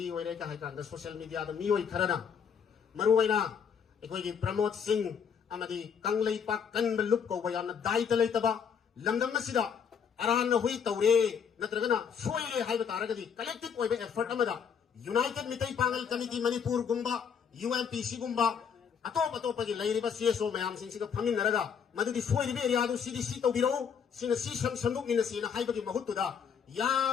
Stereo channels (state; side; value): quieter; right; 7.1 dB